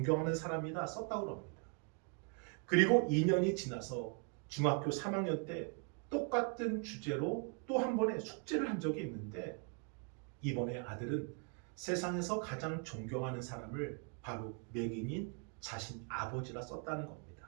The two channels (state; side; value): quieter; left; 38.5 dB